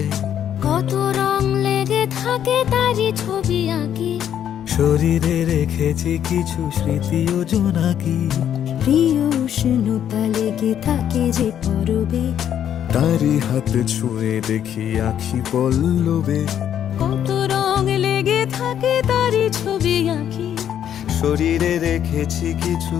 কত রং লেগে থাকে তারই ছবি আঁকি, শরীরে রেখেছি কিছু স্মৃতি ও জোনাকি। প্রিয় উষ্ণতা লেগে থাকে যে পরবে, তারি হাত ছুঁয়ে দেখি আখি পল্লবে, কত রং লেগে থাকে তারই ছবি আঁকি, শরীরে রেখেছি কিছু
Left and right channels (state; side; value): quieter; right; 9.8 dB